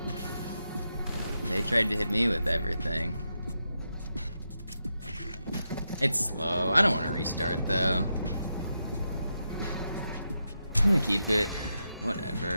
They tried to hit me with everything. It's slow. I don't want to restart though. I'm gonna keep it.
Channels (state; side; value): inverted; both; correlation -0.86